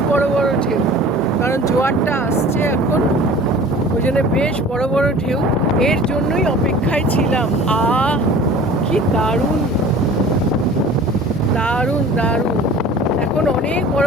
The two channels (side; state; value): both; normal; correlation 0.44